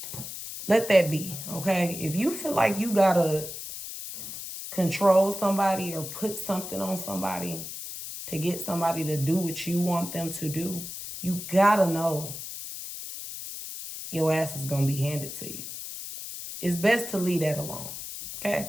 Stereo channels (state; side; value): noise; left; hiss, 9 dB below the sound